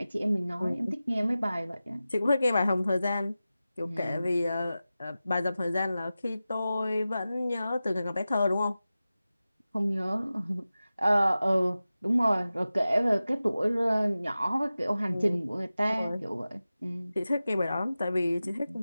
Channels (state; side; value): inverted; both; correlation -0.95